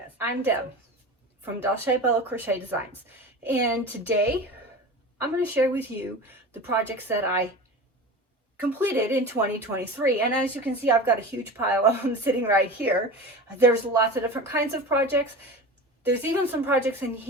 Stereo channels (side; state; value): both; normal; correlation 0.32